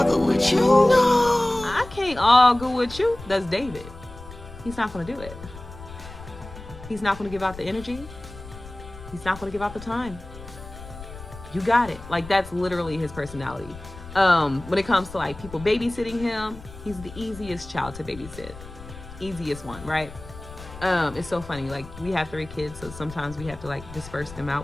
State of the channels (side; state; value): left; noise; rumble, 15 dB below the sound